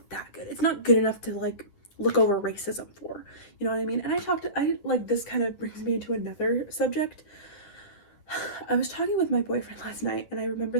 that good. It's not good enough to, like, look over racism for. You know what I mean? And this kind of brings me into another subject. I was talking with my boyfriend last night, and I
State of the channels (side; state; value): right; late; 10 ms